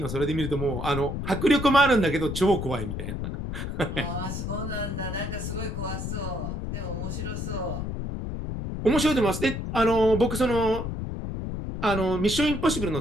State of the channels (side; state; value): left; noise; rumble, 4 dB below the sound